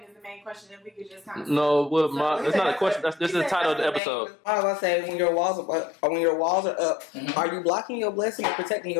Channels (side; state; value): right; drops out; at 4.0 s